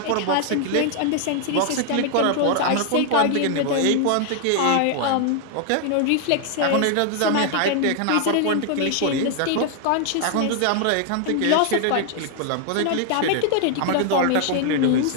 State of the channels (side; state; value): both; different; correlation 0.00